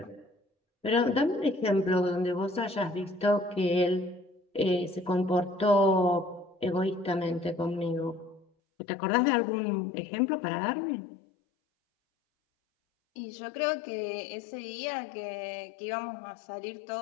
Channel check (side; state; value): right; drops out; at 8.5 s